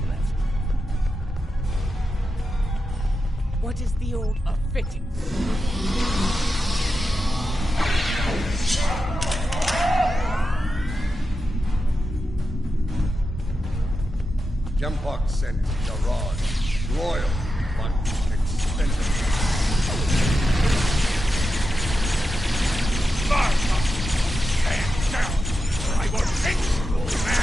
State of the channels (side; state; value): both; normal; correlation 0.89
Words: left. What is the old fitting? Jempok sent Jarod. Loyal, but expensive. Stand down, or I will fix you,